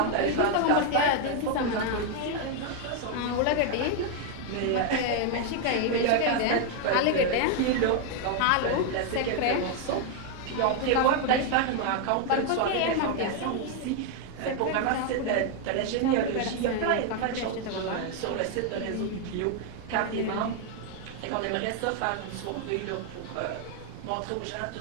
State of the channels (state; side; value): different; both; correlation 0.01